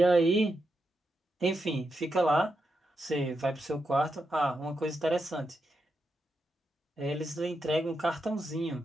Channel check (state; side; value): normal; both; correlation 0.85